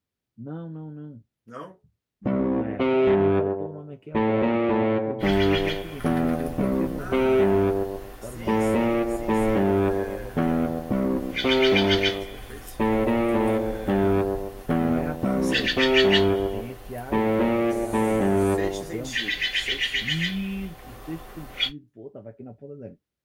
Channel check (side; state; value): both; identical; correlation 1.00